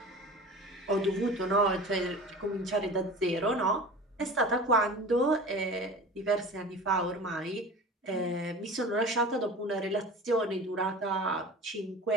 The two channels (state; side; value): normal; both; correlation 0.37